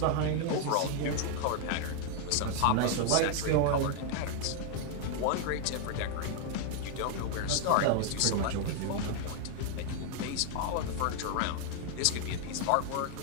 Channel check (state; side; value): different; both; correlation 0.00